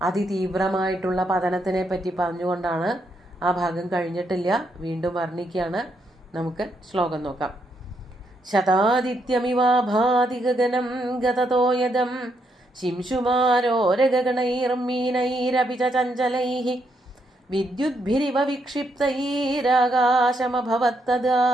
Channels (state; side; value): normal; both; correlation 0.77